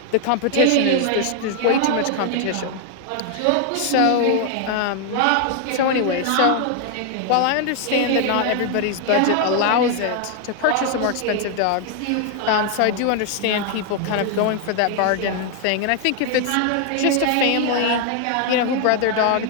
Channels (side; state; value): both; different; correlation 0.00